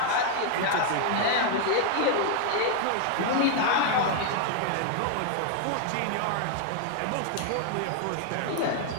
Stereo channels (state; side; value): different; both; correlation 0.00